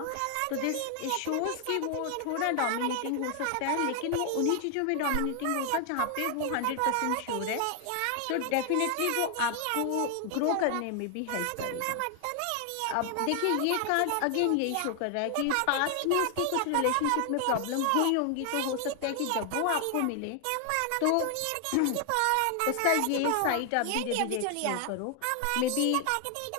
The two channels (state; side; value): different; both; correlation 0.00